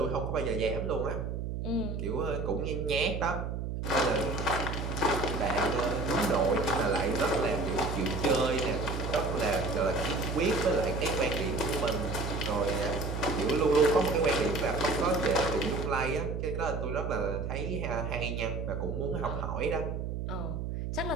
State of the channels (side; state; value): right; noise; hum, 4 dB below the sound